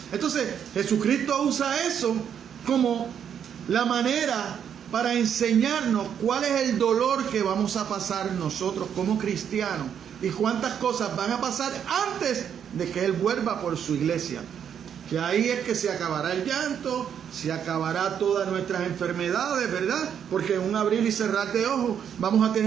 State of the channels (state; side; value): quieter; left; 8.4 dB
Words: Entonces, Jesucristo usa eso como la manera para enseñarnos cuál es el dolor que vamos a pasar nosotros como cristianos y cuántas cosas van a pasar antes de que Él vuelva por su iglesia. Que ahí es que se acabará el llanto, se acabará todas nuestras enfermedades, ¿verdad? Porque en un abrir y cerrar de ojos vamos a